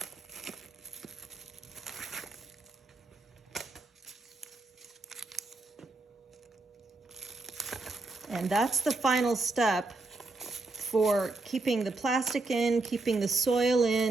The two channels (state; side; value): quieter; left; 3.2 dB